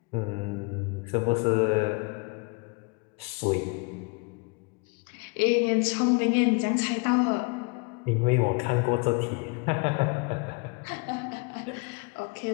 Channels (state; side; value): quieter; right; 30.9 dB